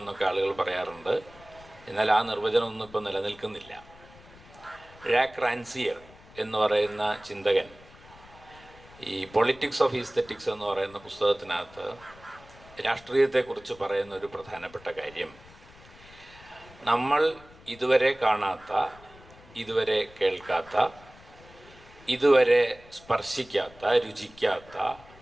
എന്നൊക്കെ ആളുകൾ പറയാറുണ്ട്. എന്നാൽ ആ നിർവചനമൊന്നും ഇപ്പോൾ നിലനിൽക്കുന്നില്ല. ജാക്ക് റാൻസിയർ എന്ന് പറയുന്ന ചിന്തകൻ ഈ പൊളിറ്റിക്സ് ഓഫ് ഈസ്തെറ്റിക്സ് എന്ന് പറയുന്ന പുസ്തകത്തിനകത്ത് രാഷ്ട്രീയത്തെക്കുറിച്ച് പറയുന്ന ഒരു പ്രധാനപ്പെട്ട കാര്യം, നമ്മൾ ഇതുവരെ കാണാത്ത, ഇതുവരെ കേൾക്കാത്ത, ഇതുവരെ സ്പർശിക്കാത്ത, രുചിക്കാത്ത,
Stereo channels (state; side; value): noise; left; rumble, 23 dB below the sound